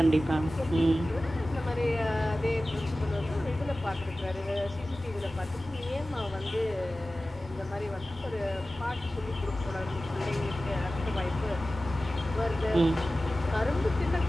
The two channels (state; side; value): normal; both; correlation 0.96